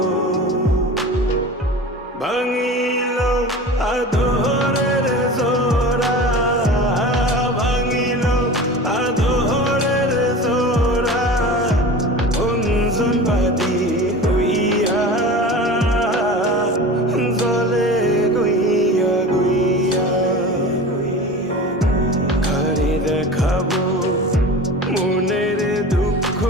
ভাঙিল আদরের জোড়া, ভাঙিল আদরের জোড়া, অঞ্জন বাদি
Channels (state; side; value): normal; both; correlation 0.35